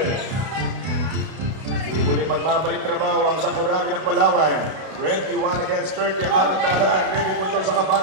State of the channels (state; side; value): late; left; 32 ms